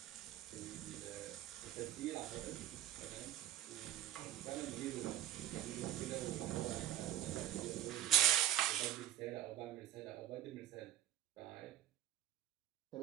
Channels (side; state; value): left; quieter; 12.7 dB